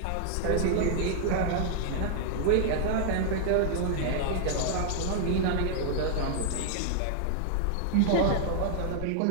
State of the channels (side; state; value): both; different; correlation 0.00